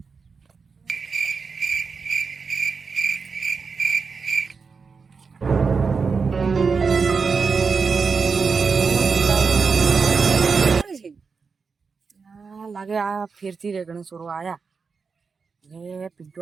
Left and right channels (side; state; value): left; quieter; 5.1 dB